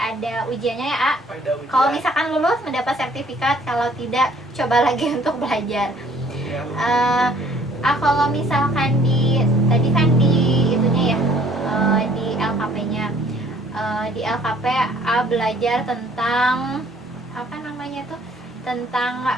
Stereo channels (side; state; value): both; normal; correlation 0.58